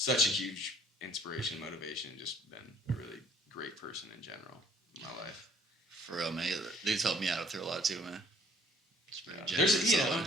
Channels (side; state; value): both; normal; correlation 0.59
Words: a huge inspiration, motivation, just been a really great person in general in my life. For real, man. They've helped me out through a lot too, man. Yeah. There's